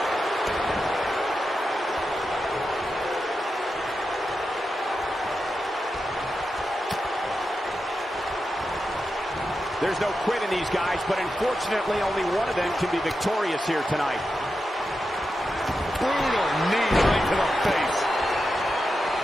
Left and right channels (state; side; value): normal; both; correlation 0.89